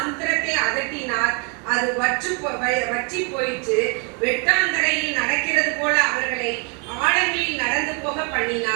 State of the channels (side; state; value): left; quieter; 34.3 dB